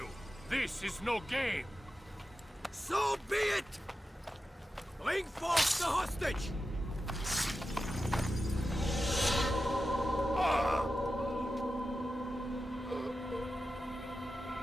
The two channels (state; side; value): normal; both; correlation 0.91